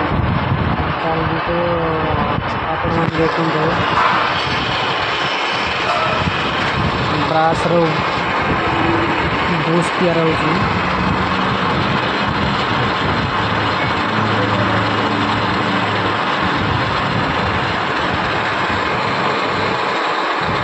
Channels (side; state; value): both; identical; correlation 1.00